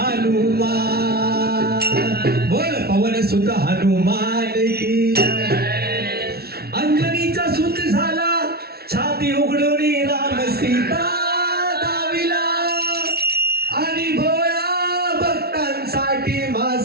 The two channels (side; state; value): left; late; 0.45 ms